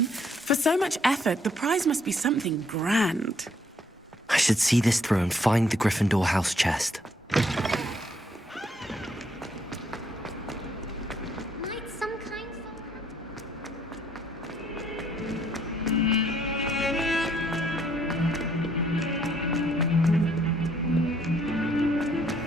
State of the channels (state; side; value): normal; both; correlation 0.67